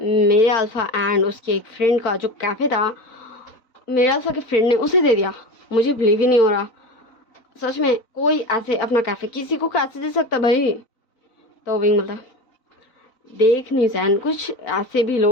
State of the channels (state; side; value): late; right; 3.9 ms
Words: अल्फा एंड उसके एक फ्रेंड का जो कैफ़े था मेरे अल्फा के फ्रेंड ने उसे दे दिया, मुझे बिलीव ही नहीं हो रहा, सच में कोई ऐसे अपना कैफ़े किसी को कैसे दे सकता भाई। तो विंग बोलता देख निशान कुछ ऐसे भी